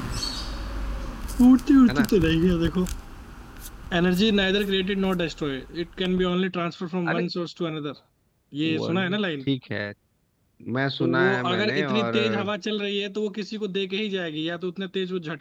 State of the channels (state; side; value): identical; both; correlation 1.00